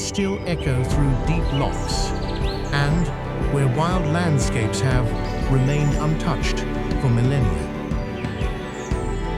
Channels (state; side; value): identical; both; correlation 1.00